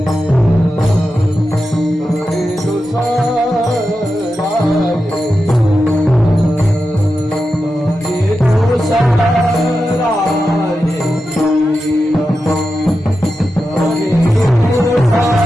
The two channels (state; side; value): normal; both; correlation 0.90